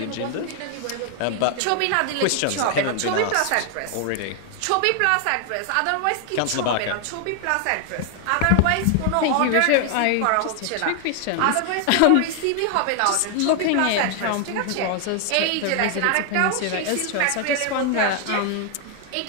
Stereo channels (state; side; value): different; both; correlation 0.00